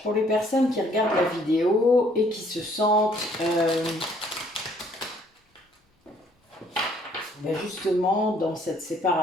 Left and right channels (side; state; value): both; normal; correlation 0.63